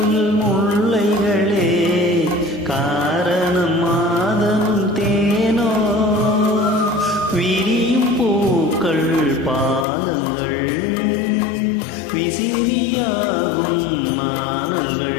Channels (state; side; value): drops out; right; at 9.9 s